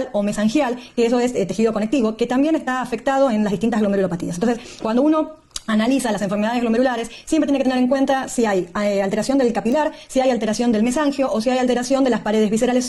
o mesangial, que eso es tejido conectivo, que también está afectado en las distintas glomerulopatías. Entonces, cuando uno analiza las enfermedades glomerulares, siempre tiene que tener en cuenta si hay alteración del capilar, si hay alteración del mesangio o si hay alteración de las paredes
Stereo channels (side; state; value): both; identical; correlation 1.00